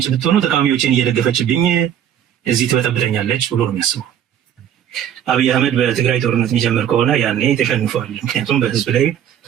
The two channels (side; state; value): left; quieter; 9.9 dB